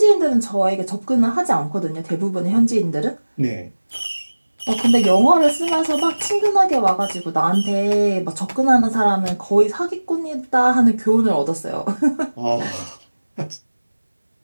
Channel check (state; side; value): inverted; both; correlation -1.00